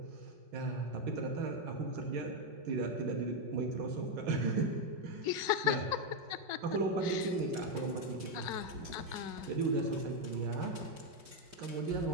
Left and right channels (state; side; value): late; left; 5.4 ms